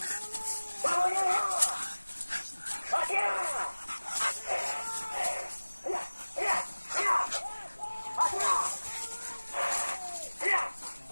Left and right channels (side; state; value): both; inverted; correlation -1.00